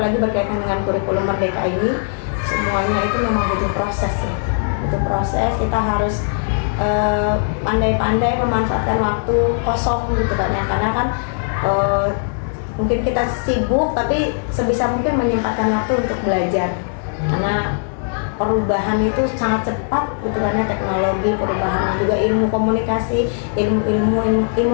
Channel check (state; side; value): silent; right; 66 dB below the other